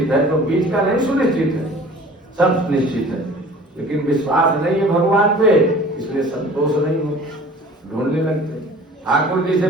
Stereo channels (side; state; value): both; normal; correlation 0.46